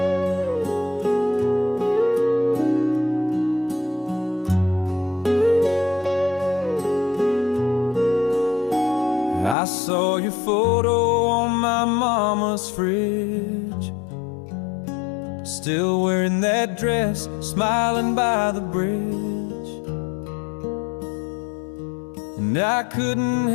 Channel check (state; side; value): drops out; right; at 9.6 s